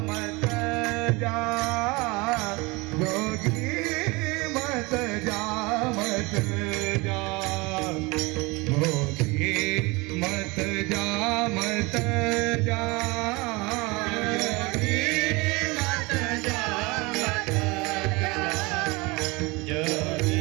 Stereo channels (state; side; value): quieter; left; 25.0 dB